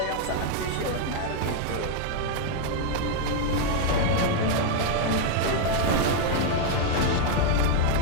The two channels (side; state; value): both; different; correlation 0.00